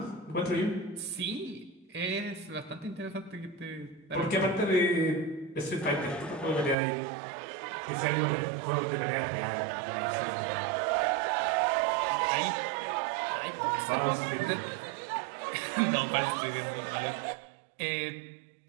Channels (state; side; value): drops out; left; at 6.8 s